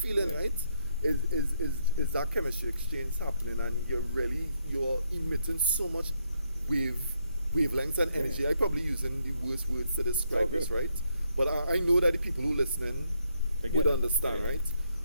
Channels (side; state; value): both; inverted; correlation -0.76